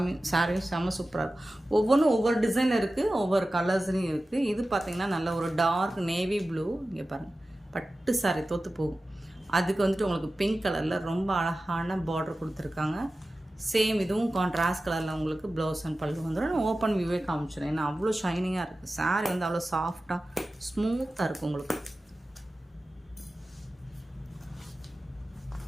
சாரியும் செம்ம சூப்பராக இருக்கும். ஒவ்வொன்றும் ஒவ்வொரு டிசைனில் இருக்குது, ஒவ்வொரு கலர்ஸ்லையும் இருக்குது. இது பார்த்திங்கன்னா நல்ல ஒரு டார்க் நேவி ப்ளூ. இங்கே பாருங்கள், பட்டு சாரி தோற்று போகும். அதுக்கு வந்துட்டு உங்களுக்கு பிங்க் கலரில் ரொம்ப அழகான பார்டர் கொடுத்துருக்காங்க. சேம் இதுவும் கான்ட்ராஸ்ட் கலரில் உங்களுக்கு ப்ளவுஸ் அண்ட் பல்லு வந்துடும். நான் ஓப்பன் வியூவே காமிச்சிடுறேன். ஏன்னா அவ்வளோ ஷைனிங்காக இருக்குது. சாரி வந்து அவ்வளோ சாஃப்டாக ஸ்மூத்தாக இருக்கும் உங்களுக்கு.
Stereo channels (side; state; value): both; normal; correlation 0.95